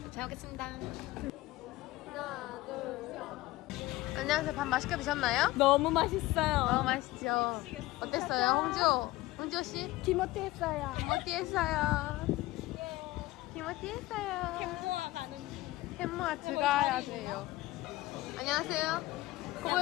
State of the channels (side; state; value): right; quieter; 18.3 dB